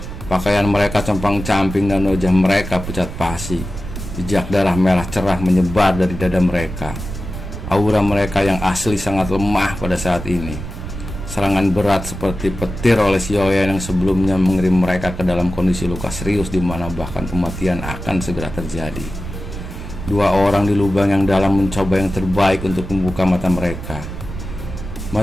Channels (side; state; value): right; noise; rumble, 9 dB below the sound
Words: Pakaian mereka compang-camping dan wajah mereka pucat pasi. Jejak darah merah cerah menyebar dari dada mereka. Aura mereka yang asli sangat lemah pada saat ini. Serangan berat seperti petir oleh Xiaoyan yang sebelumnya mengirim mereka ke dalam kondisi luka serius di mana bahkan kematian akan segera terjadi. Dua orang di lubang yang dalam mencoba yang terbaik untuk membuka mata mereka.